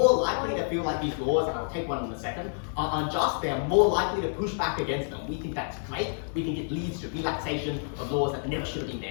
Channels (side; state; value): right; silent; digital silence